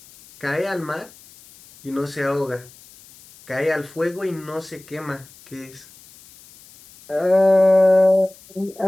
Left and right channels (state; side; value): noise; left; hiss, 24 dB below the sound